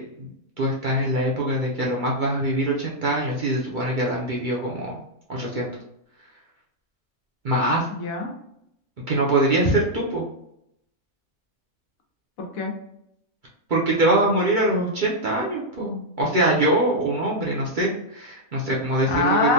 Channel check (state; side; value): normal; both; correlation -0.03